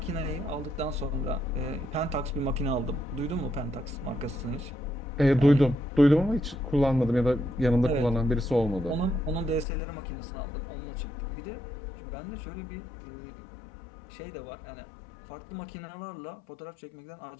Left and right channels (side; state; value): right; drops out; at 9.7 s